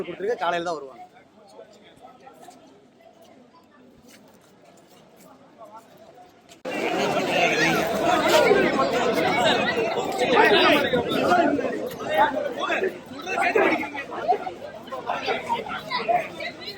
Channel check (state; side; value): identical; both; correlation 1.00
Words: கொடுத்துருக்கு, காலையில தான் வருவாங்க.